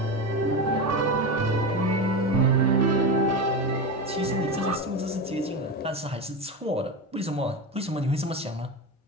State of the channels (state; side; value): normal; both; correlation 0.20